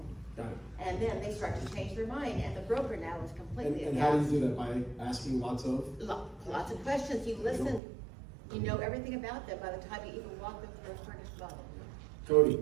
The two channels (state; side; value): drops out; left; at 7.8 s